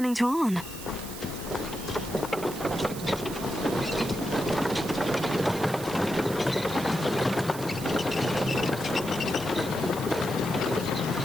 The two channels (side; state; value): right; noise; hiss, 12 dB below the sound